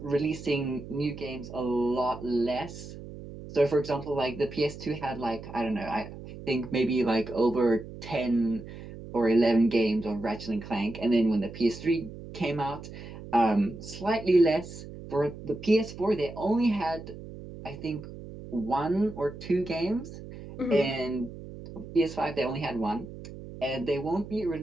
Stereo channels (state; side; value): noise; right; hum, 13 dB below the sound